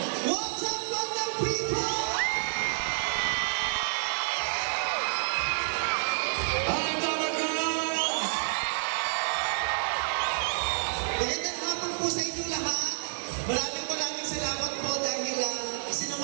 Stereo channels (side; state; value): left; silent; digital silence